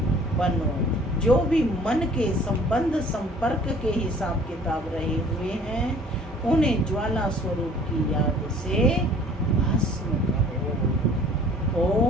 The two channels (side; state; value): both; normal; correlation 0.52